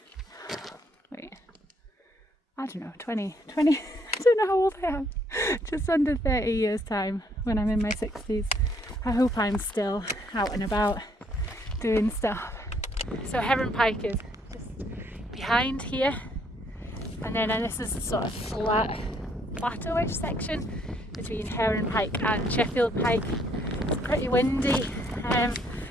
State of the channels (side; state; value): both; normal; correlation 0.67